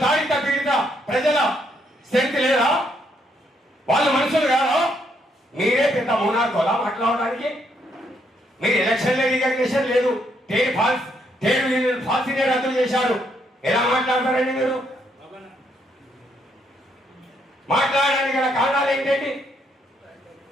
తాడిత పీడిత ప్రజల శక్తి లేదా? వాళ్ళు మనుషులు కాదా? మీరే పెద్ద మోనార్కోలా మాట్లాడడానికి? మీరు ఎలక్షన్ రికగ్నిషన్ లేదు, ట్రేడ్ యూనియన్ ఫాల్సీనే రద్దు చేశారు. ఎలా మాట్లాడతారండి మీరు? మాట్లాడడానికి గల కారణాలు ఏంటండి?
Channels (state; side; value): normal; both; correlation 0.74